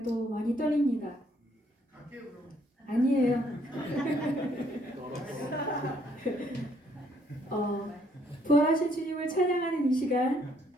또 많이 떨립니다. 아니에요. 부활하신 주님을 찬양하는 이 시간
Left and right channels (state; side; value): normal; both; correlation 0.67